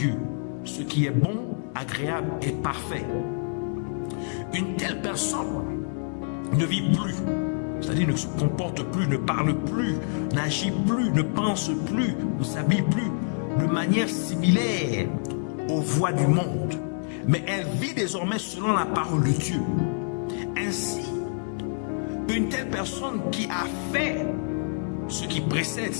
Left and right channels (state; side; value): silent; right; digital silence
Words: ce qui est bon, agréable et parfait. Une telle personne ne vit plus, c'est-à-dire ne se comporte plus, ne parle plus, n'agit plus, ne pense plus, ne s'habille plus de manière similaire aux voies du monde, mais elle vit désormais selon la parole de Dieu. Ainsi, une telle personne qui a fait ce qui précède